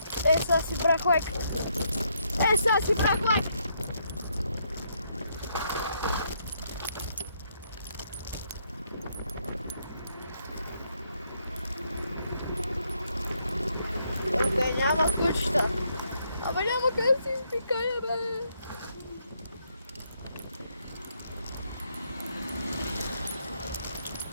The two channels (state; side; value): inverted; both; correlation -0.74